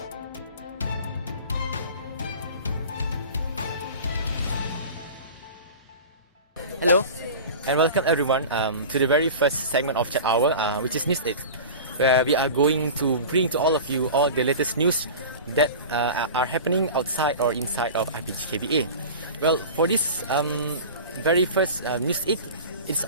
Hello, and welcome everyone to the very first segment of Chat Hour, which is News 8, where we are going to bring to all of you all the latest news that are happening outside or inside of IPGKBA. Well, for this very first News 8, it's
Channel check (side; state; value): both; inverted; correlation -0.35